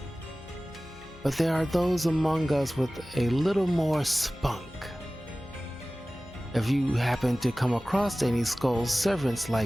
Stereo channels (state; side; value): noise; left; hum, 23 dB below the sound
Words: But there are those among us with a little more spunk. If you happen to come across any skull servants